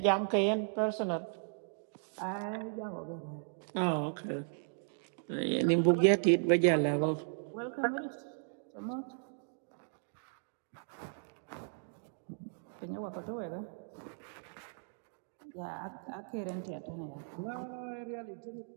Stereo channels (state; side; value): silent; left; digital silence